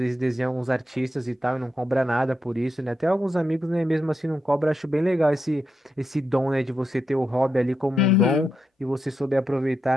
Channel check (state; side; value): normal; both; correlation 0.85